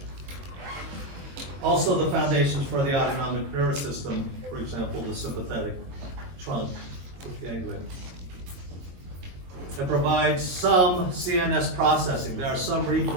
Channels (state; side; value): late; left; 22 ms